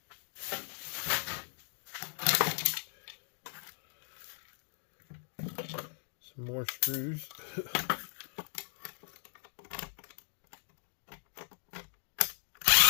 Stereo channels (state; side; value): silent; right; digital silence